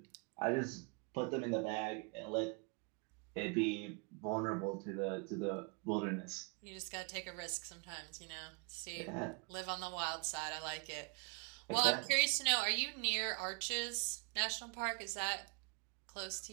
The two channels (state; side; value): quieter; left; 33.7 dB